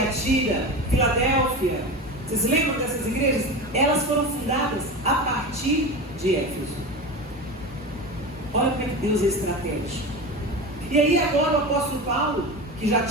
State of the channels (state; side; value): normal; both; correlation 0.26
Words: Filadélfia. Vocês lembram dessas igrejas? Elas foram fundadas a partir de Éfeso. Olha como é que Deus é estratégico. E aí agora o apóstolo Paulo, que já